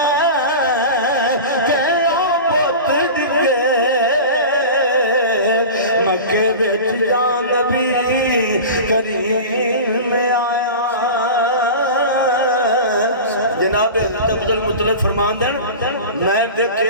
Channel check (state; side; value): inverted; both; correlation -0.32